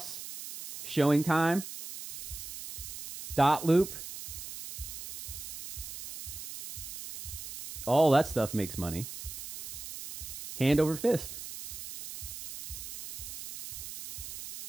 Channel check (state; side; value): noise; right; hiss, 10 dB below the sound